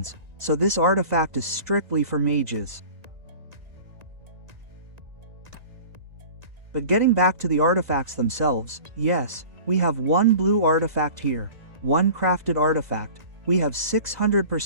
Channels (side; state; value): left; late; 1.9 ms